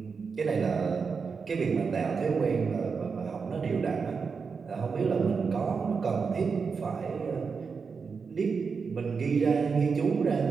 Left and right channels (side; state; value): left; quieter; 5.4 dB